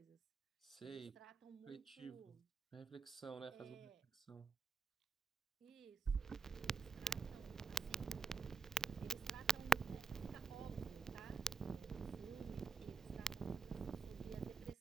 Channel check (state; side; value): quieter; left; 4.9 dB